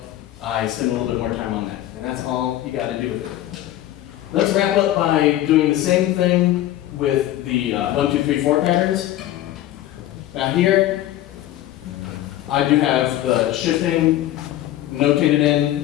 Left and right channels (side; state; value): right; quieter; 13.8 dB